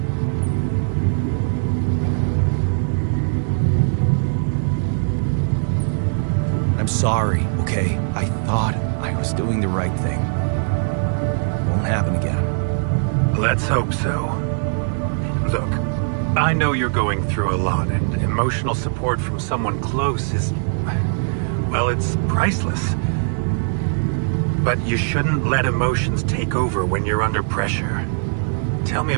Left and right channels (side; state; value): left; silent; digital silence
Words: I'm sorry, okay? I thought I was doing the right thing. Won't happen again. Let's hope so. Look, I know you're going through a lot, and emotional support from someone close is... well, it's priceless. But you shouldn't let emotions take over when you're under pressure. Tell me